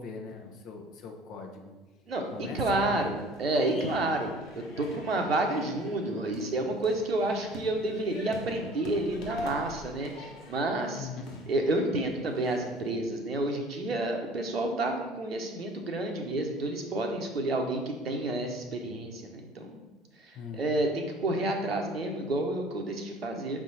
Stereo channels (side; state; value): both; normal; correlation 0.49